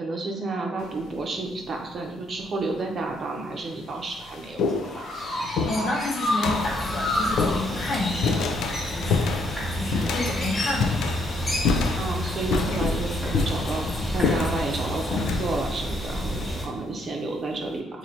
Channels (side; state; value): both; normal; correlation 0.71